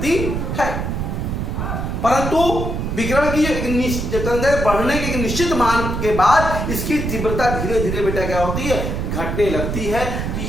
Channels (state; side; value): noise; right; rumble, 2 dB below the sound